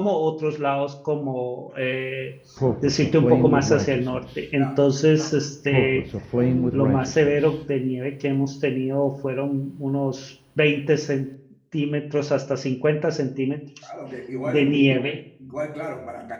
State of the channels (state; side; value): identical; both; correlation 1.00